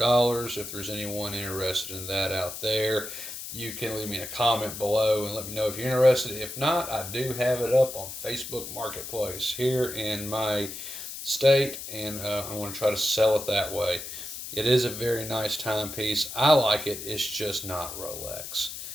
If there's anyone interested in that out there, you can leave me a comment below and let me know if you're interested. If not, I do have it up on Facebook Marketplace here in my state, and I want to try to sell it that way. It is a very nice timepiece. I like it. It's just not Rolex,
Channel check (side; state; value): left; noise; hiss, 9 dB below the sound